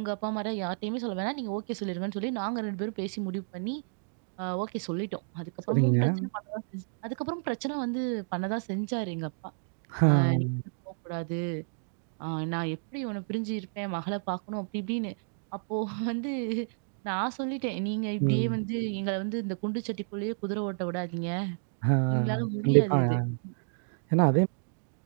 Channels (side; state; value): left; silent; digital silence